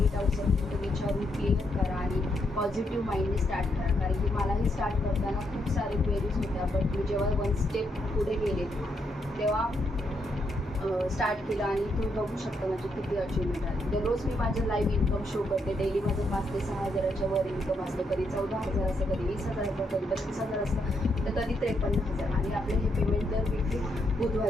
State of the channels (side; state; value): both; normal; correlation 0.78